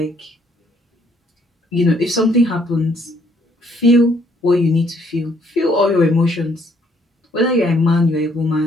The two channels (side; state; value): both; normal; correlation 0.67